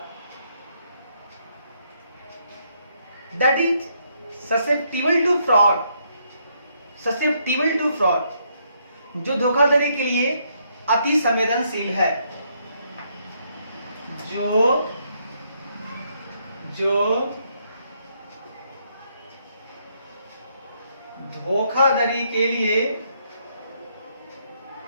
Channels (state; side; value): inverted; both; correlation -0.74